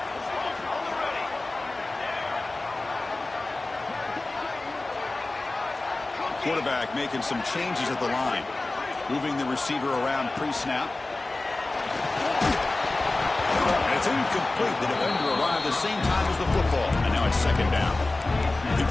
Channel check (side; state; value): right; quieter; 3.1 dB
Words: Quarterback making some changes at the line. Moving the receiver around pre-snap. And it's incomplete. The defender arrived the same time as the football. And now it's second down. The